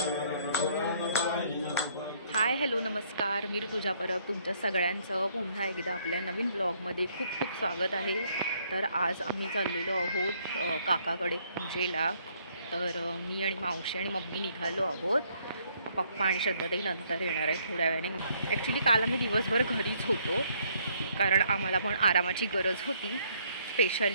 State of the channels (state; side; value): inverted; both; correlation -0.67